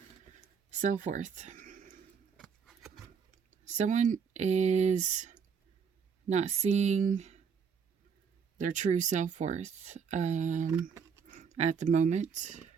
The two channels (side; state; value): left; quieter; 6.5 dB